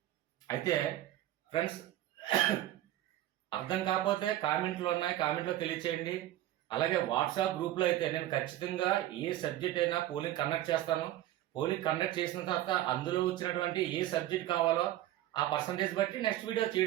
అయితే ఫ్రెండ్స్ అర్థం కాకపోతే కామెంట్లో ఉన్నాయి, కామెంట్లో తెలియచేయండి. అలాగే వాట్సాప్ గ్రూప్లో అయితే నేను ఖచ్చితంగా ఏ సబ్జెక్ట్ అయినా పోలింగ్ కండక్ట్ చేస్తాను. పోలింగ్ కండక్ట్ చేసిన తర్వాత అందులో వచ్చినటువంటి ఏ సబ్జెక్ట్ కావాలో ఆ పర్సంటేజ్ బట్టి నెక్స్ట్ వీడియో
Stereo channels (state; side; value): quieter; left; 14.0 dB